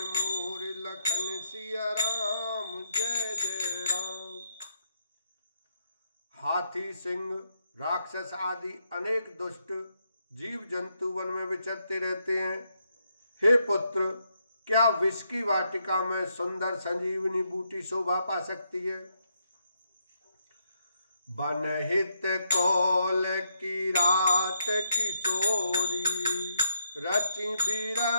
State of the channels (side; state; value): both; inverted; correlation -0.78